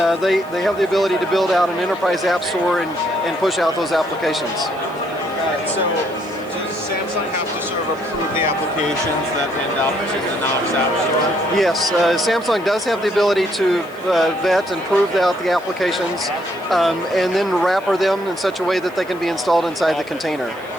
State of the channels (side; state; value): left; noise; hiss, 26 dB below the sound